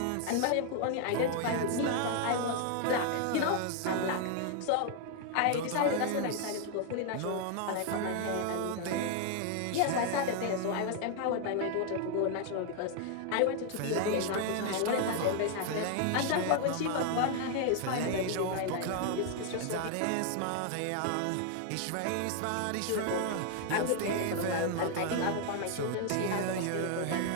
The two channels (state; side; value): different; both; correlation 0.00